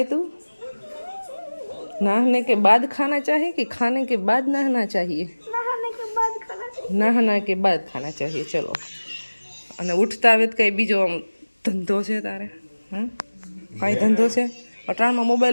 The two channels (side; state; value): both; inverted; correlation -1.00